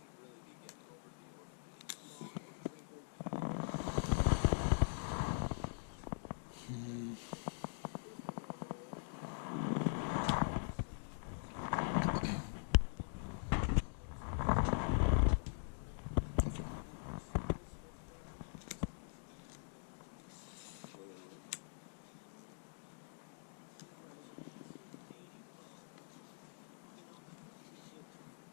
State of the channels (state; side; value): silent; right; digital silence